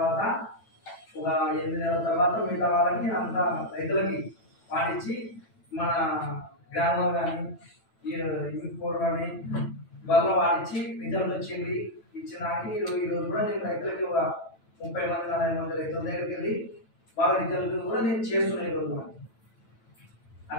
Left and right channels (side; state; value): right; late; 9.0 ms